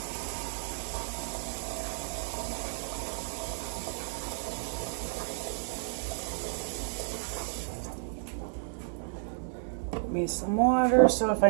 Put me some water, so if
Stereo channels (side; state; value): left; silent; digital silence